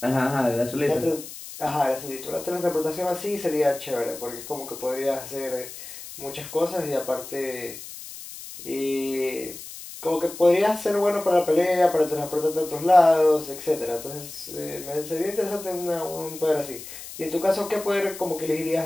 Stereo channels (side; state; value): left; noise; hiss, 13 dB below the sound